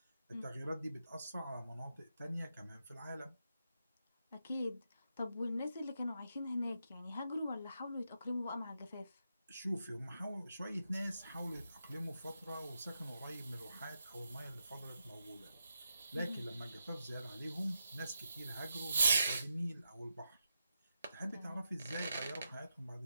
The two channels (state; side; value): inverted; both; correlation -0.85